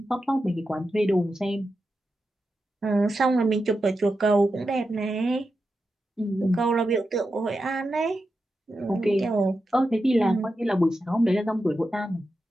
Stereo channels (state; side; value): normal; both; correlation 0.89